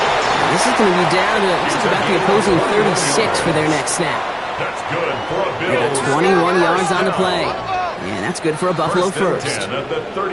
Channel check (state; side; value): identical; both; correlation 1.00